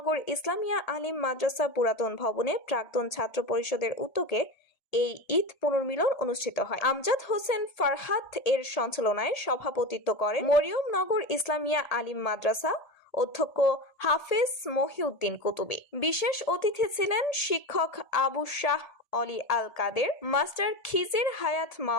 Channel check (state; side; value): late; right; 1.8 ms